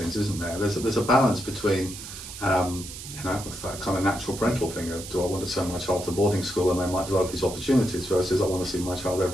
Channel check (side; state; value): right; noise; hiss, 11 dB below the sound